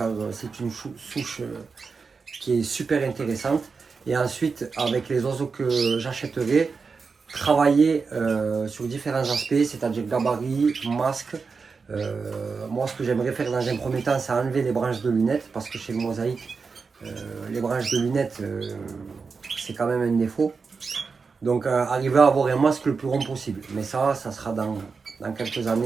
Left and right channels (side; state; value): left; quieter; 4.9 dB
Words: c'est une souche qui est super intéressante. Et ensuite, avec les oiseaux que j'achèterai, travailler sur différents aspects, c'est-à-dire gabarit, masque. Moi, ce que j'aimerais faire dans un premier temps, c'est enlever les branches de lunettes parce que chez le mosaïque, les branches de lunettes, c'est quand même un défaut. Donc, arriver à avoir un masque le plus rond possible. Mais ça sera dans quelques